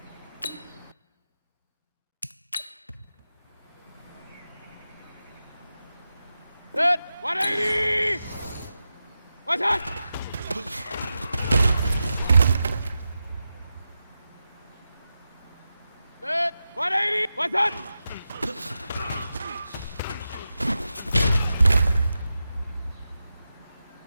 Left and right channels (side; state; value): both; inverted; correlation -0.91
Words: Set. 180. What's that? Set. 180. What's that?